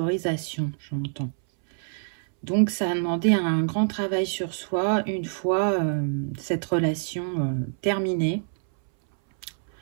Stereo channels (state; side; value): silent; left; 61 dB below the other